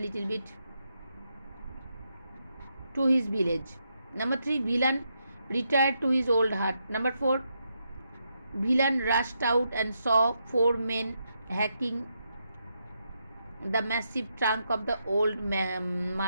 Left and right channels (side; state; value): both; inverted; correlation -0.82